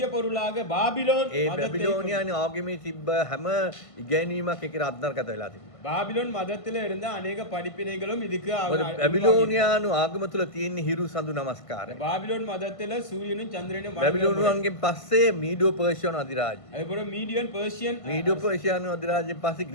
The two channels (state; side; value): late; right; 1.5 ms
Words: பொருளாக பாபிலோன் ඒ බැබිලෝනියානු ආගමේ තිබ්බ හැම ඉගැන්වීමක් ඒකට අත්නර්ගත වෙලා තිබ්බා. பாபிலோன் மதத்துல இருந்த அநேக படிப்பினைகளும் இதுக்கு බැබිලෝනියානු ආගම තුල තියෙන හිරු සඳු නමස්කාරය. பாபிலோன் மதத்துல சூரியனும் சந்திரனும் බැබිලෝනියන්ගෙන් පස්සේ මීඩෝ පර්ෂියානු අධිරාජ්‍ය. அதுபோல மீடியன் பெர்ஷியன், මීඩෝ පර්ෂියානු අධිරාජ්‍යයෙන් පස්සේ